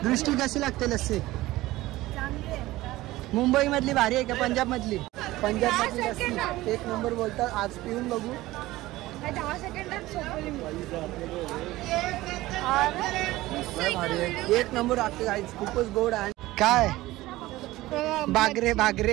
दृष्टी कशी लागते लस्सी? मुंबई मधली भारी आहे का पंजाब मधली? पंजाब मधली लस्सी एक नंबर बोलतात. आज पिऊन बघू. 10 सेकंदात एक नंबर वाटते गाईच. खूपच गोड आहे. काय बागरे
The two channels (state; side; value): quieter; left; 17.7 dB